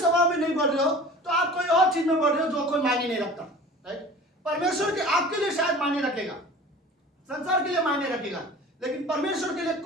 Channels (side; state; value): both; normal; correlation 0.41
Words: में नहीं बढ़ रहे हो तो आप कोई और चीज में बढ़ रहे हो जो कोई मायने नहीं रखता, राइट। परमेश्वर के आपके लिए शायद मायने रखेगा, संसार के लिए मायने रखेगा, लेकिन परमेश्वर के लिए